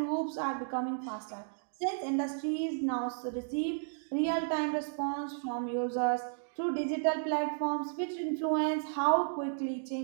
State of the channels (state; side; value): silent; left; digital silence